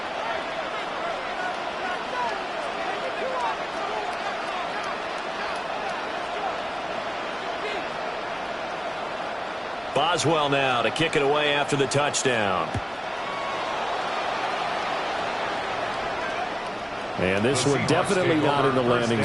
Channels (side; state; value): both; identical; correlation 1.00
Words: Boswell now to kick it away after the touchdown. And this one definitely not in the landing